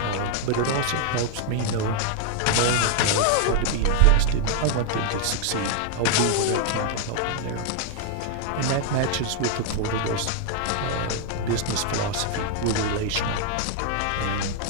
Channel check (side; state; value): both; different; correlation 0.00